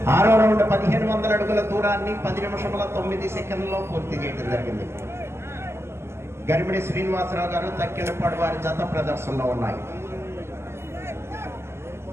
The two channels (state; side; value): late; left; 0.12 ms